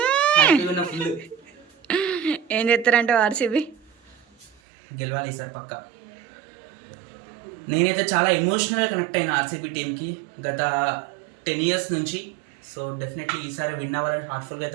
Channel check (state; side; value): drops out; left; at 4.5 s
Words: Full ఏం చేస్తారంటే ఆర్సీబీ గెలవాలి ఈసారి పక్క. నేనైతే చాలా ఎమోషనల్గా కనెక్ట్ అయిన ఆర్సీబీ టీంకి గత 10 years నుంచి. సో డెఫినెట్లీ ఈసారి విన్ అవ్వాలని హార్ట్ఫుల్గా